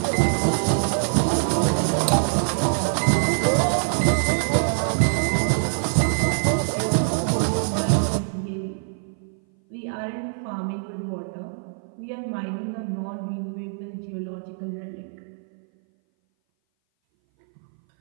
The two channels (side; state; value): left; silent; 59 dB below the other